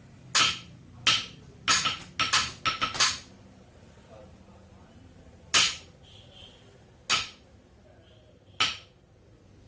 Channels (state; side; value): identical; both; correlation 1.00